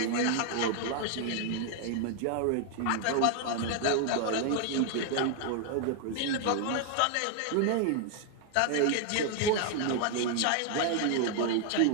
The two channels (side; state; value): both; different; correlation 0.00